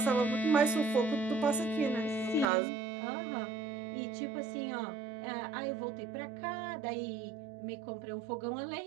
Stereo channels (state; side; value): drops out; left; at 2.5 s